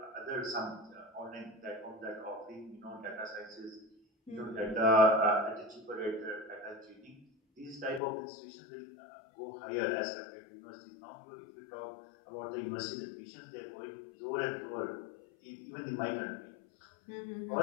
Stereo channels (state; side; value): drops out; right; at 8.0 s